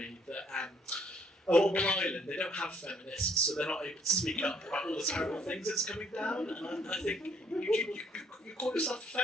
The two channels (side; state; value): both; normal; correlation 0.65